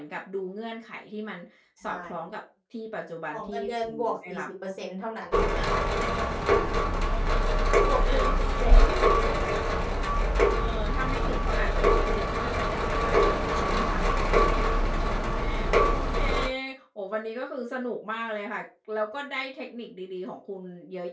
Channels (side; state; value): both; identical; correlation 1.00